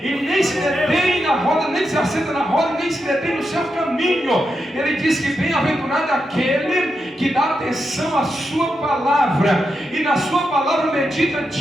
e nem se detém na roda, nem se assenta na roda, nem se detém no seu caminho. Ele diz que bem-aventurado é aquele que dá atenção à sua palavra, e na sua palavra medita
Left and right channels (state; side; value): normal; both; correlation 0.86